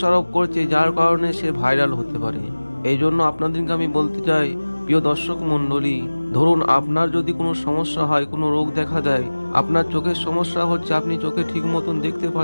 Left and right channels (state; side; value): inverted; both; correlation -1.00